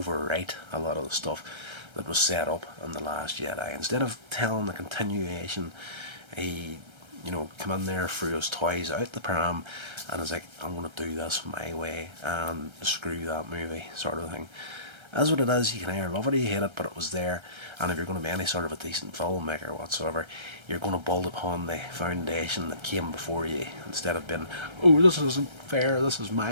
a lot of the stuff that was set up in The Last Jedi. Instead of telling the continuation, he come in there, threw his toys out the pram, and was like, I'm going to do this my way and screw that movie, sort of thing. As what it is, you can either love it or you hate it, but it was there. And if you're going to be any sort of a decent filmmaker whatsoever, you're going to build upon the foundation that came before you, instead of being, oh, this isn't fair, this is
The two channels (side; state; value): left; late; 1.3 ms